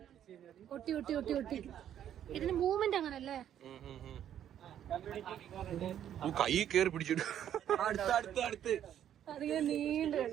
ഇതിന് മൂവ്മെന്റ് അങ്ങനല്ലേ, കൈ കേറി പിടിച്ചിട്ട് അതിങ്ങനെ നീണ്ടു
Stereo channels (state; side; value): quieter; left; 10.4 dB